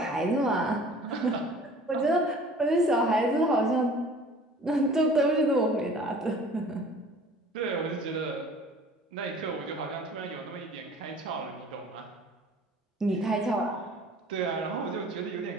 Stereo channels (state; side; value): normal; both; correlation 0.48